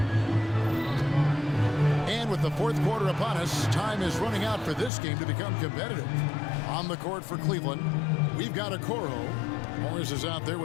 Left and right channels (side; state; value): right; drops out; at 4.9 s